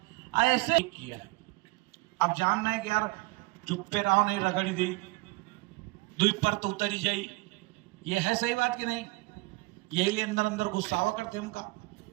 ऐसे किया है। अब जानना है कि यार चुप पे रहो नहीं रगड़ी दी दुई पर तो उतरी जाई, ये है सही बात कि नहीं? यही लिए अंदर अंदर गुस्सावा करते हमका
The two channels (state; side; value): quieter; left; 24.0 dB